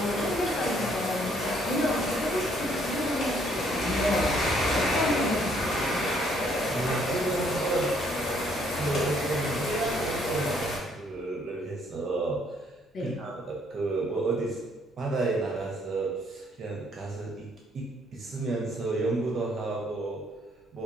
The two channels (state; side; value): normal; both; correlation 0.66